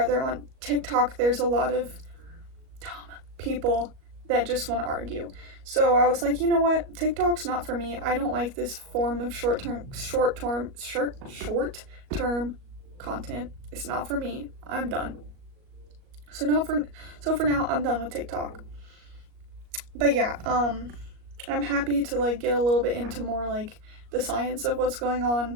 on TikTok there's a lot of dumb people that just want to argue. So I was like, you know what? TikTok's not for me. I don't like this form of short-term content. It's not for me. I'm done. So for now I'm done with TikTok. But yeah, I'm happy to like get a little bit into more like the science of what's going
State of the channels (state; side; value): late; left; 38 ms